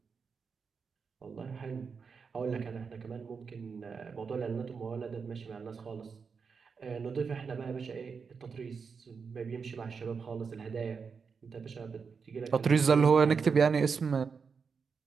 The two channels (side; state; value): left; quieter; 5.6 dB